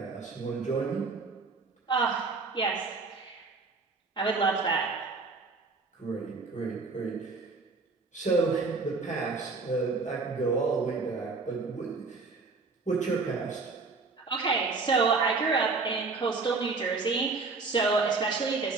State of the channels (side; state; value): left; quieter; 4.1 dB